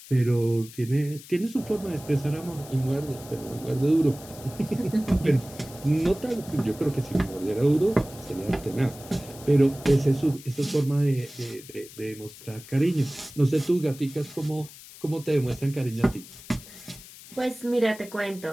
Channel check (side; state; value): left; noise; hiss, 18 dB below the sound